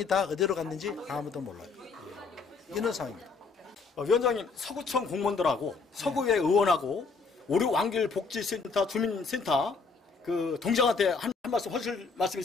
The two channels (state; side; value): quieter; right; 4.6 dB